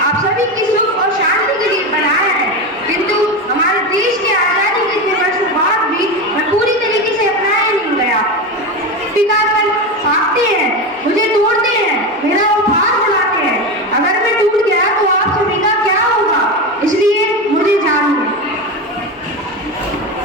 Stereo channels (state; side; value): normal; both; correlation 0.19